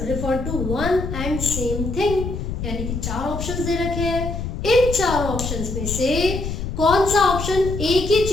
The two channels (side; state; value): left; noise; rumble, 5 dB below the sound